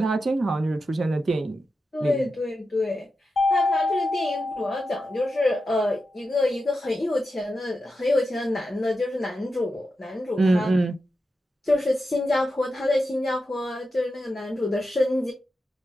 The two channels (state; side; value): normal; both; correlation 0.89